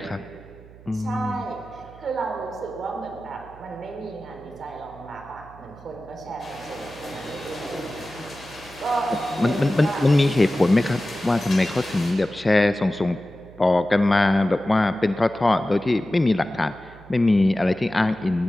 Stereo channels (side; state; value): right; noise; hum, 21 dB below the sound